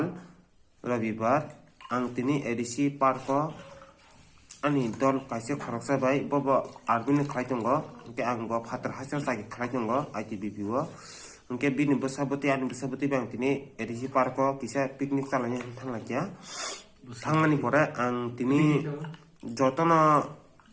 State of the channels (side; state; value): both; identical; correlation 1.00